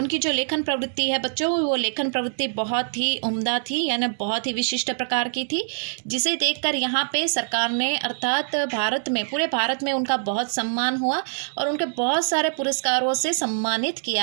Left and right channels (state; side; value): silent; left; digital silence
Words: जो लेखन प्रवृत्ति है बच्चों, वो लेखन प्रवृत्ति बहुत ही उम्दा थी, यानी बहुत ही विशिष्ट प्रकार की थी, जिसे देखकर यहाँ पे सरकार ने अर्थात भारत में, पूरे भारत में उनका बहुत सम्मान हुआ और उनके बहुत सारे पुरस्कारों से सम्मानित